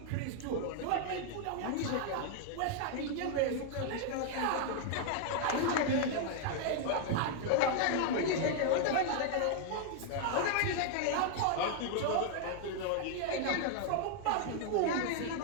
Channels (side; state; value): both; different; correlation 0.00